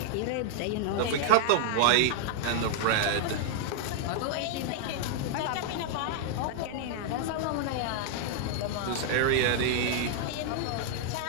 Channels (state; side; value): different; both; correlation -0.01